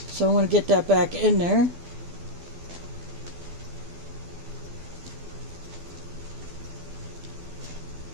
So I want to get that back in there.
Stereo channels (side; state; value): left; late; 12 ms